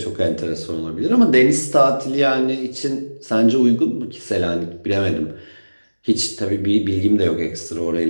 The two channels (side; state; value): both; inverted; correlation -1.00